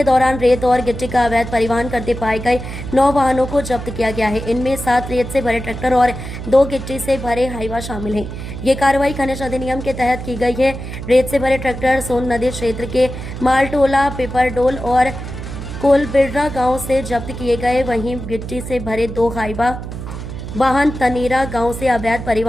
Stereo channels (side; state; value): right; noise; hum, 8 dB below the sound